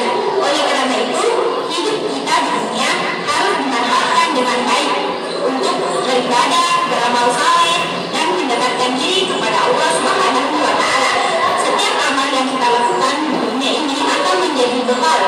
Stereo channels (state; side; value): identical; both; correlation 1.00